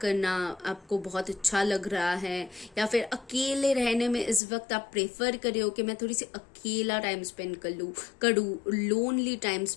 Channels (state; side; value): drops out; right; at 4.4 s